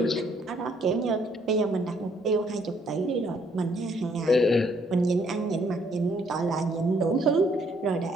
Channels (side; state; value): both; normal; correlation 0.67